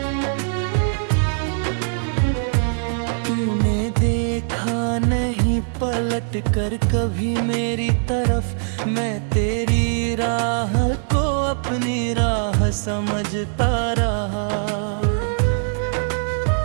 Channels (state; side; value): silent; left; 65 dB below the other